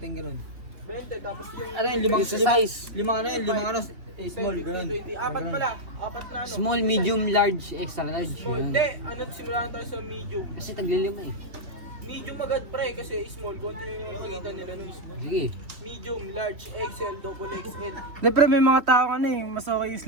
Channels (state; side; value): late; left; 3.3 ms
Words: 20, tapos yung... Ano yun, limang ano, small, ganun. Apat pala, apat na ano. Small, medium, large, extra large. Small. Yun. Hindi, ano, simulan tayo sa medium. Kasi taglilima eh. Medium agad pre, kasi small, konti lang yung pagitan nila nun. Sige. Medium, large, XL, double XL. Hindi pre, may mga tao ano eh, mas okay yung